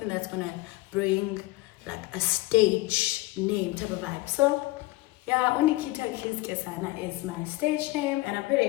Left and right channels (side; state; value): right; quieter; 20.0 dB